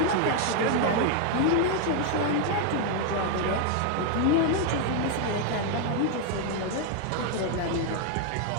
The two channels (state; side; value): different; both; correlation 0.00